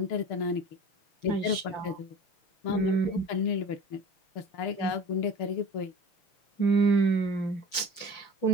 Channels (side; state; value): right; late; 5.8 ms